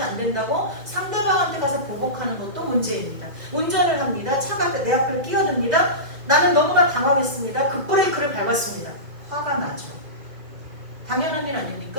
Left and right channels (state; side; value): late; left; 2.0 ms